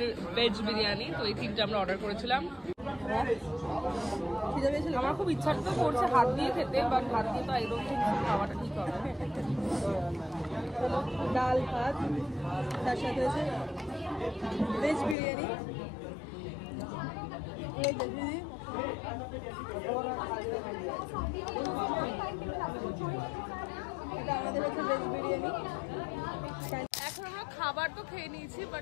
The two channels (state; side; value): drops out; right; at 15.2 s